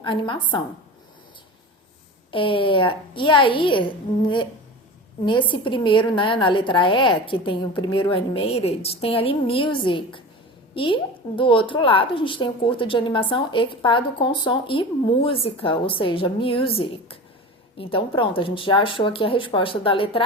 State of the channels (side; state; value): both; normal; correlation 0.32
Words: animação. E aí, nesse primeiro, né, na letra E, que tem o primeiro animated, tem ali music. E do outro lado, a gente tem o curta de animação equipado com som e música, ou seja, music. Então, pronto, a gente já achou aqui a resposta da